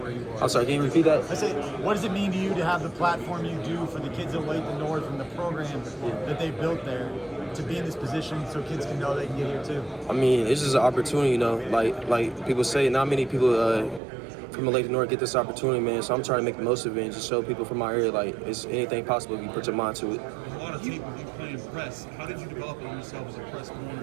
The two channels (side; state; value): left; drops out; at 14.0 s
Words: you are? I'm sorry, can you repeat that? I say, what does it mean to you to have the platform you do for the kids at Olathe North and the program that they built there, to be in this position so kids can know they can get here too? I mean, it's just an opportunity, you know, like people say, not many people from Olathe North get this opportunity, man, so I'm trying to make the most of it and just show people from my area, like, it's anything possible if you put your mind to it. A lot of tape of you playing press. How did you develop yourself as a press